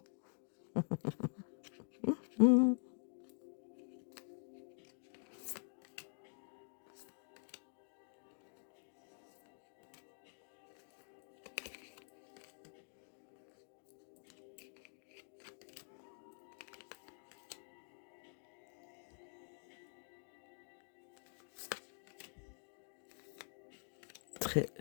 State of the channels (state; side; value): silent; right; digital silence